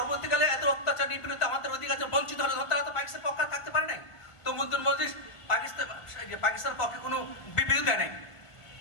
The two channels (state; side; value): late; right; 1.6 ms